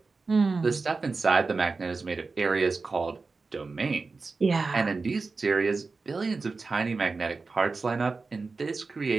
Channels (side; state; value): left; quieter; 4.1 dB